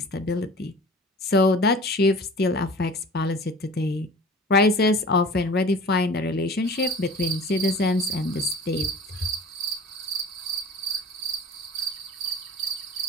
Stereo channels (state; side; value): normal; both; correlation 0.42